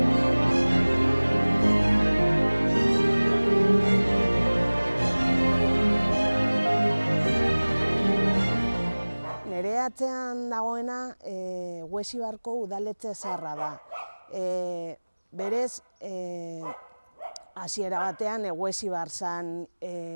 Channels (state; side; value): inverted; both; correlation -1.00